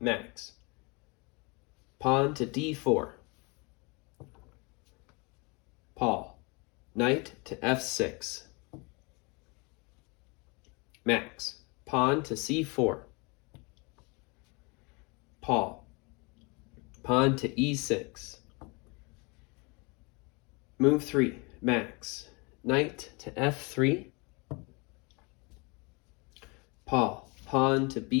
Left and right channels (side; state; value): right; quieter; 29.5 dB